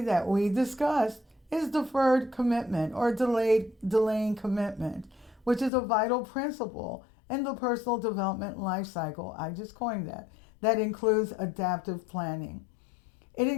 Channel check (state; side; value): drops out; right; at 5.7 s